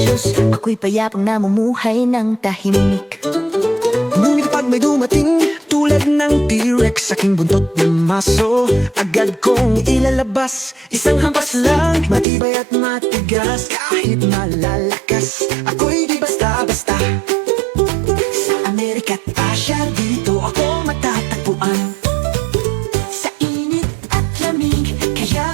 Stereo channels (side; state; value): left; drops out; at 12.2 s